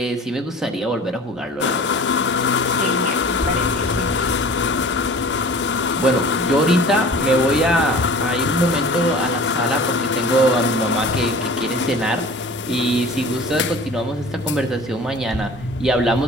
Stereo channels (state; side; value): normal; both; correlation 0.43